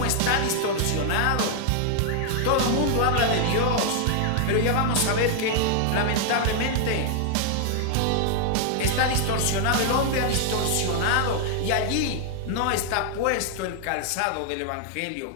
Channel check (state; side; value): different; both; correlation 0.00